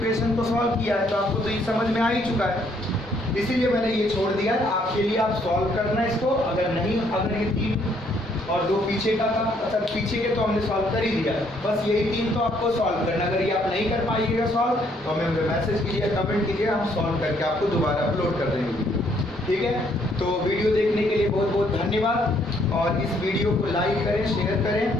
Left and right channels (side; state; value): both; normal; correlation 0.68